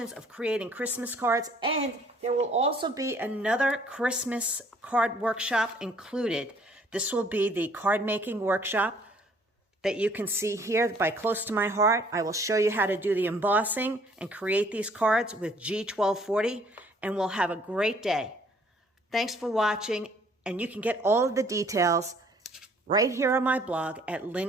of creating Christmas cards, and there will also be another Christmas card workshop included. This will be the card making workshop that you can see here by Close to My Heart. I will show you how to do the embossing and create these cards with G1240, and we'll have a great day. Thanks for watching, and you can get all of the details right here on my blog at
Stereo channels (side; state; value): both; normal; correlation 0.59